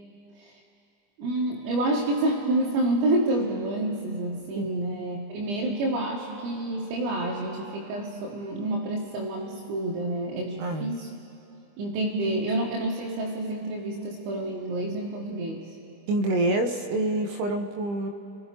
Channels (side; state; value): left; late; 25 ms